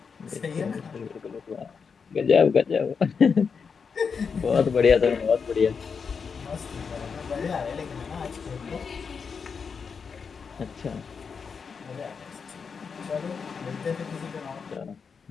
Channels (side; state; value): right; quieter; 5.8 dB